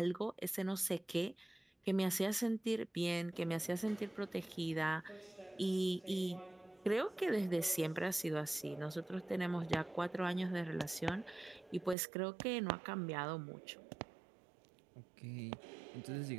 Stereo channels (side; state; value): left; drops out; at 12.0 s